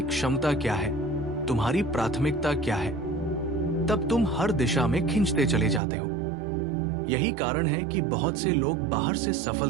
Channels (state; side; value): drops out; left; at 5.8 s